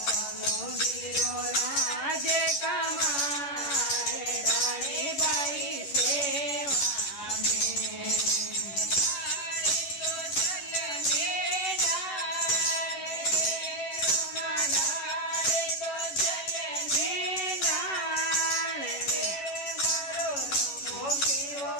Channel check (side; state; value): right; late; 11 ms